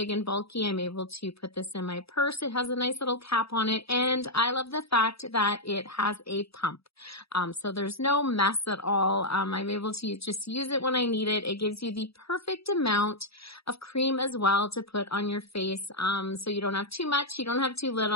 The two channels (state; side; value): late; right; 0.77 ms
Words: and bulky. I'm able to put this in my purse. It has a nice little cap on it. And I love the fact that it has a pump. So there's no mess at all. I'm able to just use it when I need it. It gives you the perfect amount of cream as well to put on your face. So you don't have too much, you don't have too